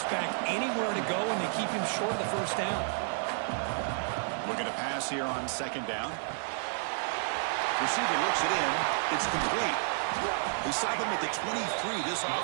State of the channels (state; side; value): silent; left; digital silence